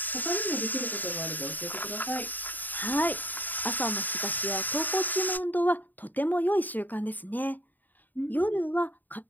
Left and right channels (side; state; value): right; late; 0.087 ms